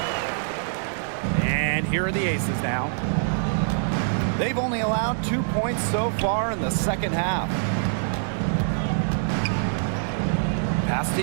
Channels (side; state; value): left; silent; 56 dB below the other